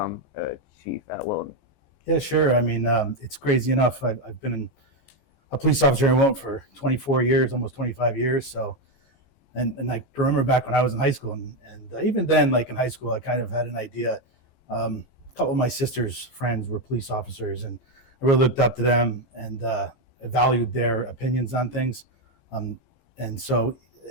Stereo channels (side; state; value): right; late; 15 ms